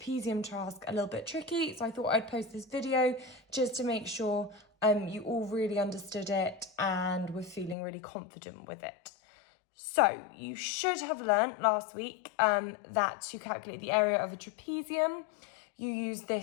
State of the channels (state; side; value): drops out; right; at 7.8 s